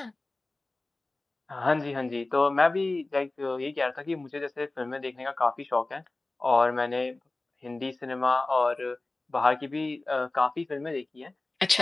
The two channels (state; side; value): quieter; right; 3.0 dB